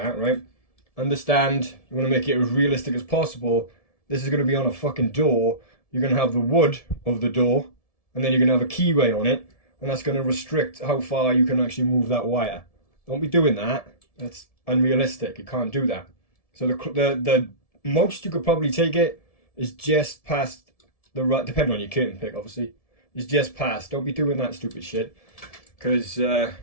right? Understand, you want to make it as realistic as possible. This is going to be on a fucking door. You're going to have the wood of the door, and then you're going to have a keyway on it, and that's going to restrict how far you can actually move that wire. Don't be doing that. That's unrealistic. You can't do that. So the most you could probably take it is just past the right, depending on your curtain pick, obviously. Is just past. Don't be doing that stupid shit, because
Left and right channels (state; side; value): late; right; 1.7 ms